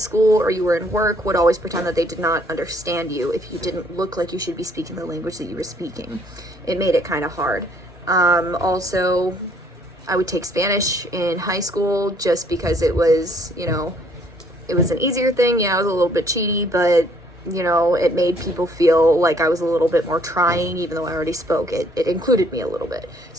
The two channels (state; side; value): normal; both; correlation 0.64